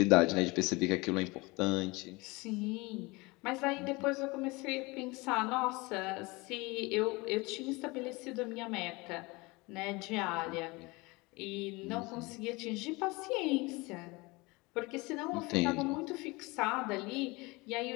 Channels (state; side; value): quieter; right; 24.5 dB